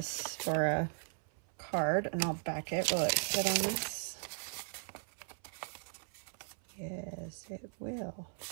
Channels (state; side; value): silent; left; 53 dB below the other